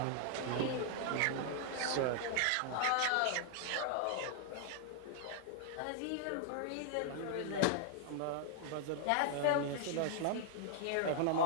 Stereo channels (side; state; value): both; different; correlation 0.00